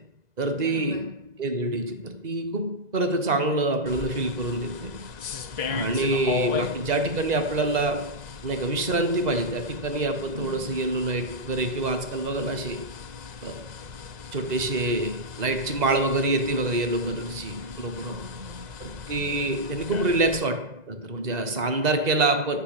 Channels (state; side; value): late; left; 2.0 ms